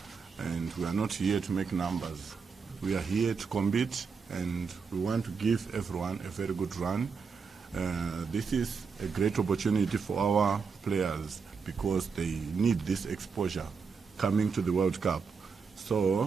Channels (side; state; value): left; quieter; 5.5 dB